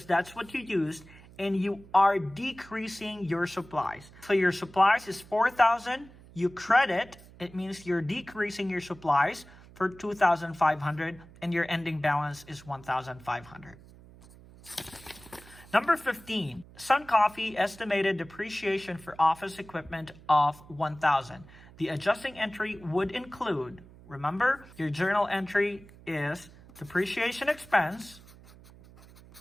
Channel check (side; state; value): right; noise; hum, 21 dB below the sound